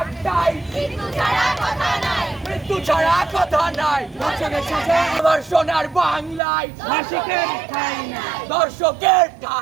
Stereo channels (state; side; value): drops out; left; at 6.4 s